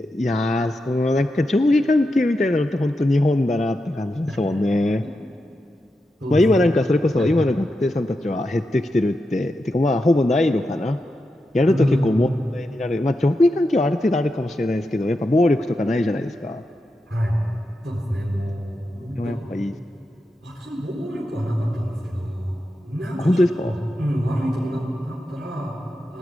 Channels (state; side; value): normal; both; correlation 0.88